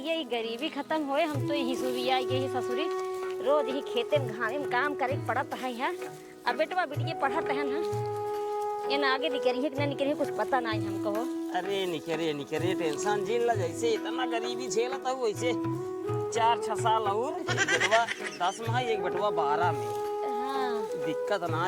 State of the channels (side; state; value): both; identical; correlation 1.00